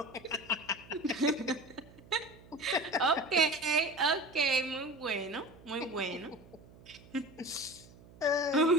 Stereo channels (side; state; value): right; noise; hum, 22 dB below the sound